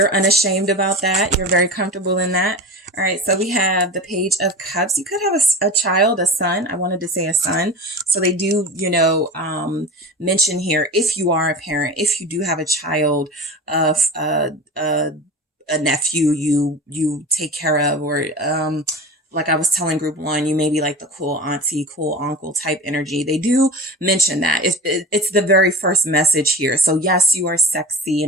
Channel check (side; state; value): both; normal; correlation 0.32